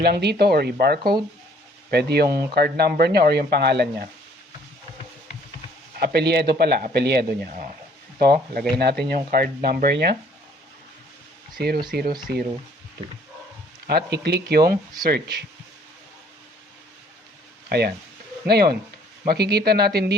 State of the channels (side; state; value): both; normal; correlation 0.60